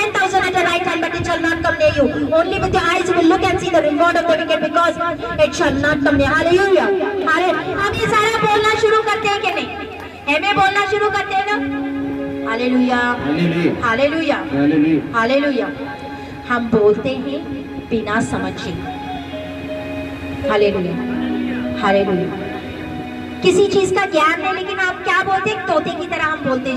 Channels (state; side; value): identical; both; correlation 1.00